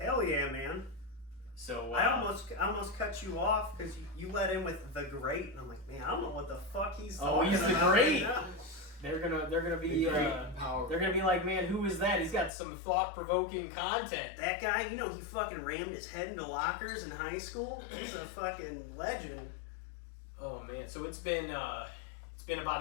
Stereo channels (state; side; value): drops out; right; at 12.5 s